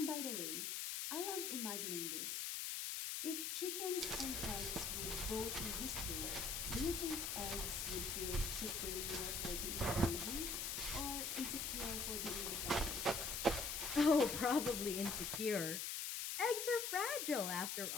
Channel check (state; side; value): noise; left; hiss, 2 dB below the sound